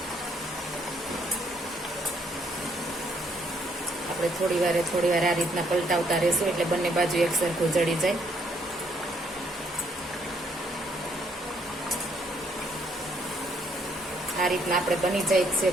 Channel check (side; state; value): both; normal; correlation 0.70